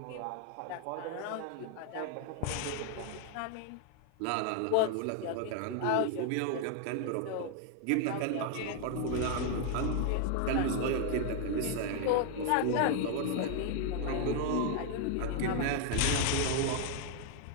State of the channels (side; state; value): both; different; correlation 0.00